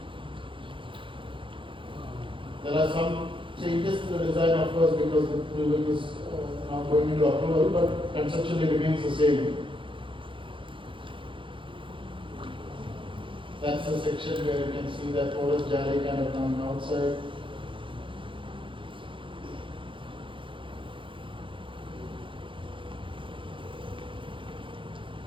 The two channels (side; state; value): left; late; 0.25 ms